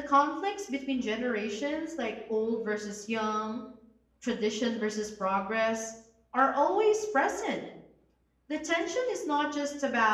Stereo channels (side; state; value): both; identical; correlation 1.00